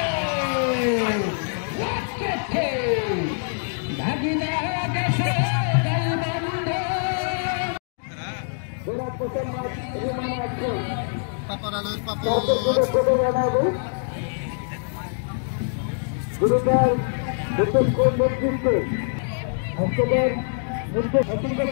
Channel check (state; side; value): silent; right; digital silence